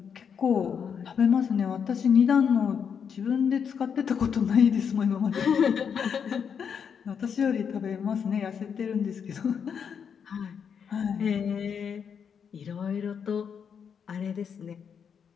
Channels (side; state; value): right; quieter; 7.1 dB